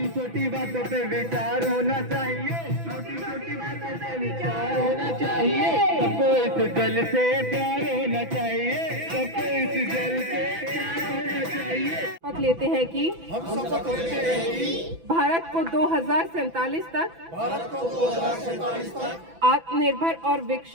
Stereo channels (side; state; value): left; late; 6.0 ms